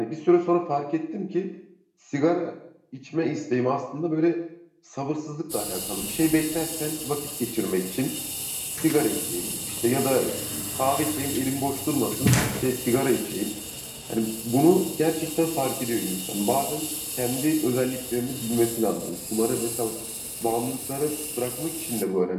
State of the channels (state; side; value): identical; both; correlation 1.00